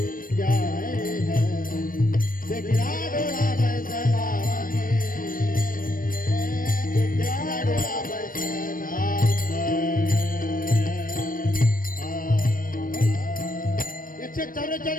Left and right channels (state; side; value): late; right; 0.40 ms